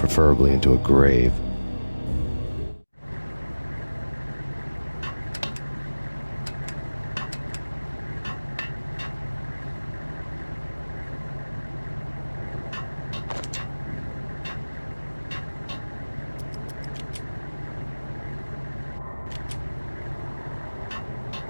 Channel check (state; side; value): inverted; both; correlation -1.00